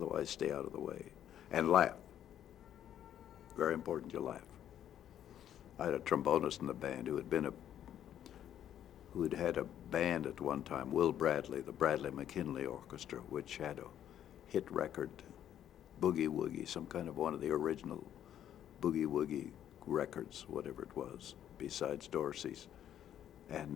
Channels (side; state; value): right; quieter; 10.6 dB